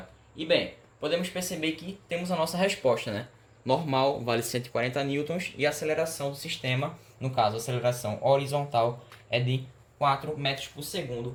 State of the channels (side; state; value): both; identical; correlation 1.00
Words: E bem, podemos perceber que temos a nossa resposta, né? Normal vale 140 newtons e a aceleração do sistema, no caso a aceleração horizontal, é de 4 metros por